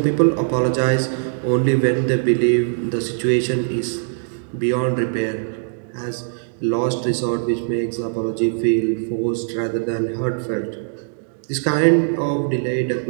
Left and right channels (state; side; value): silent; left; digital silence